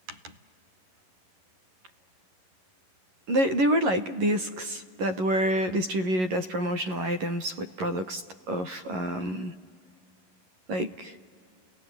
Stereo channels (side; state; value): left; late; 11 ms